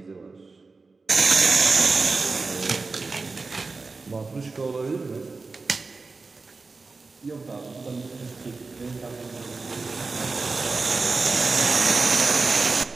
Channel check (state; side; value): quieter; left; 4.0 dB